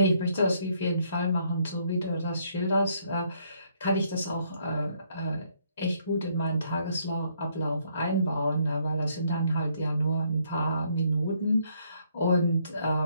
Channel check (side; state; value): both; inverted; correlation -0.70